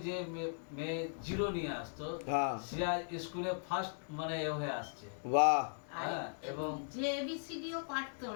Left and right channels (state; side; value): silent; right; digital silence